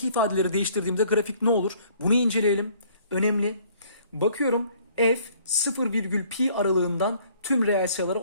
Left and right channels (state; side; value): inverted; both; correlation -0.59